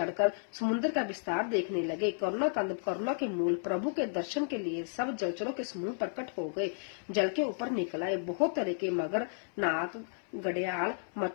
समुद्र का विस्तार देखने लगे। करुणा कंद करुणा के मूल प्रभु के दर्शन के लिए सब जलचरों के समूह प्रकट हो गए। जल के ऊपर निकल आए। बहुत तरह के मगर, नाग, घड़ियाल,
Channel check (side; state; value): right; silent; 56 dB below the other